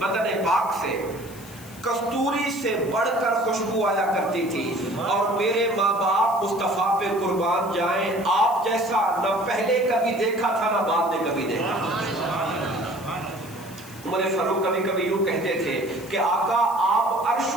بدن پاک سے کستوری سے بڑھ کر خوشبو آیا کرتی تھی، اور میرے ماں باپ مصطفیٰ پہ قربان جائیں، آپ جیسا نہ پہلے کبھی دیکھا تھا نہ بعد میں کبھی دیکھا تھا۔ عمر فاروق کبھی کبھی یوں کہتے تھے کہ آقا آپ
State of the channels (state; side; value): noise; left; hiss, 19 dB below the sound